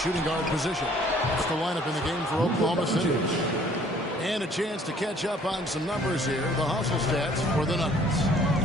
guard position. That's the lineup in the game for Oklahoma City. And a chance to catch up on some numbers here. The hustle stats for the Nuggets.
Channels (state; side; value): normal; both; correlation 0.58